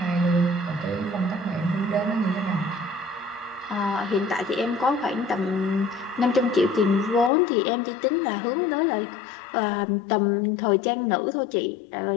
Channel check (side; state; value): right; drops out; at 7.3 s